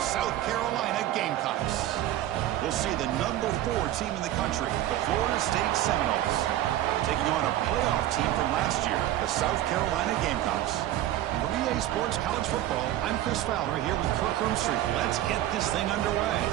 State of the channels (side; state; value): left; quieter; 13.4 dB